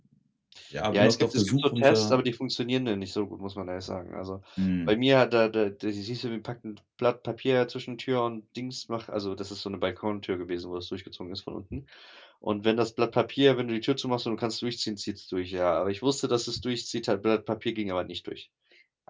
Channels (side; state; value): both; identical; correlation 1.00